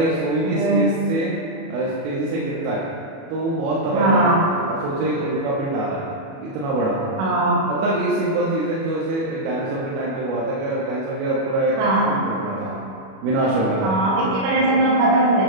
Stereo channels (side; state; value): left; late; 37 ms